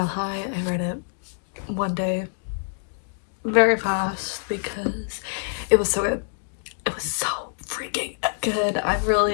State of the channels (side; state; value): right; silent; digital silence